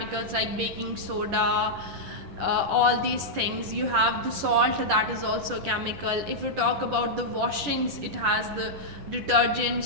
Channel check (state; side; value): late; left; 10 ms